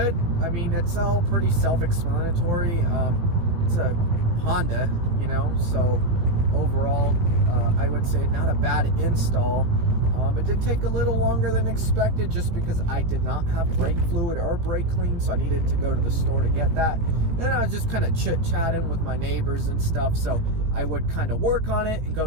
I mean, it's all pretty self-explanatory. It's a Honda, you know, so overall, I would say not a bad install. It did take a little longer than expected just because I did not have brake fluid or brake clean, so I needed to go to the store to get that. And I was just kind of chit-chatting with my neighbors and stuff, so I would kind of work on it and go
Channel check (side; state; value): left; late; 18 ms